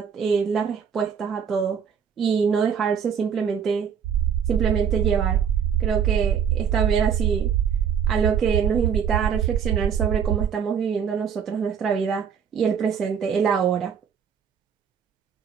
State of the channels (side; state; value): left; quieter; 7.5 dB